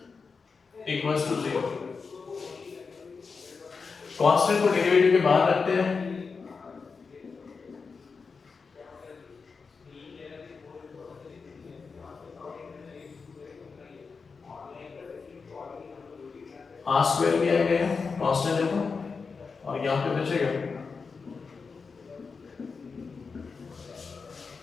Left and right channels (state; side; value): quieter; right; 4.9 dB